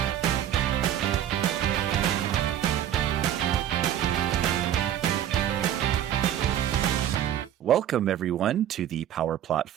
welcome, everyone, to the Power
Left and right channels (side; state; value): left; quieter; 11.0 dB